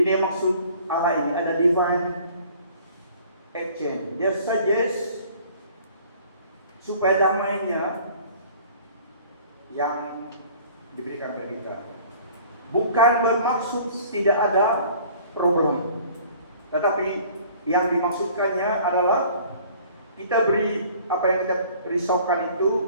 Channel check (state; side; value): inverted; both; correlation -0.51